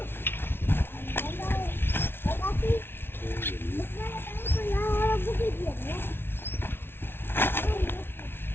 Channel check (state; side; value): late; right; 0.11 ms